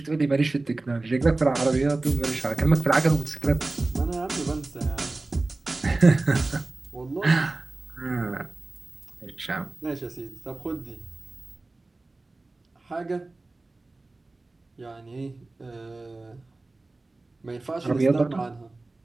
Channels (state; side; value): quieter; left; 3.2 dB